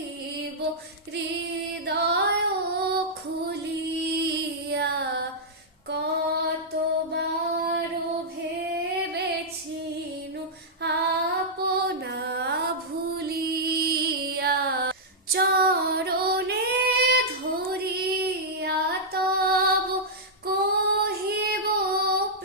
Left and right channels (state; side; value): normal; both; correlation -0.09